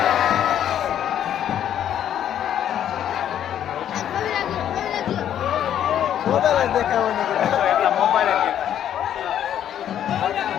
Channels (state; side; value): quieter; right; 10.3 dB